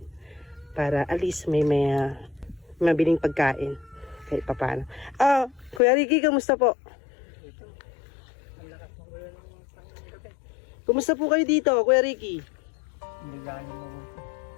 Para at least may mabiling pagkain kahit papaano. Kuya Ricky, kamusta po? Kumusta po kayo dito, Kuya Ricky? Hindi gano'n mo.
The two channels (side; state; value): right; drops out; at 5.8 s